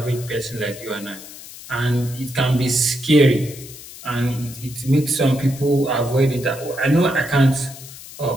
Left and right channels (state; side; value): noise; left; hiss, 15 dB below the sound